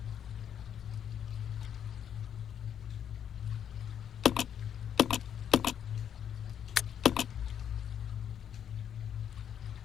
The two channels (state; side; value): quieter; right; 8.9 dB